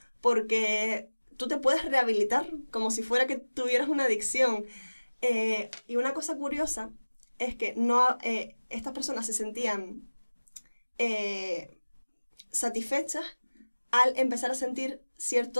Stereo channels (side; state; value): both; inverted; correlation -1.00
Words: porque tú te puedes rehabilitar como si fuera que tuvieras una adicción. Y una cosa curiosa es que estas personas se sentían satisfechas al empezar a sentir